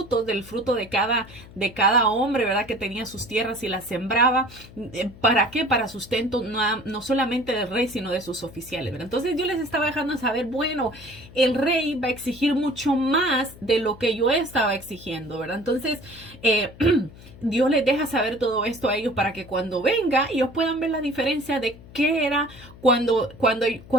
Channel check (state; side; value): noise; left; hum, 19 dB below the sound